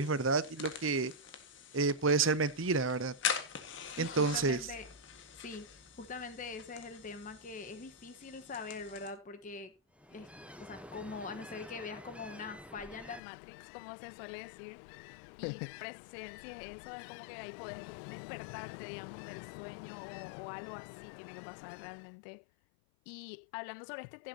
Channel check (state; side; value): drops out; right; at 13.2 s